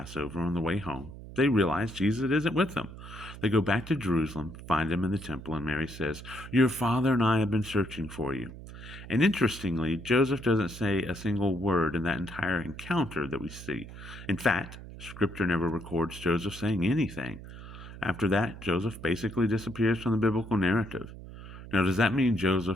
On the way home, they realize Jesus isn't with them. They go back to Jerusalem, find him in the temple, and Mary says, "Your father and I have been searching for you." And interestingly, Joseph doesn't say a single word in that entire encounter that we see. In fact, Scripture never records Joseph saying anything. After that, Joseph basically disappears from the biblical narrative. Now, does that mean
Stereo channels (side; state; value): right; noise; hum, 14 dB below the sound